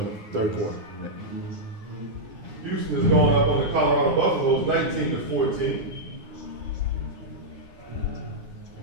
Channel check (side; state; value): left; late; 9.8 ms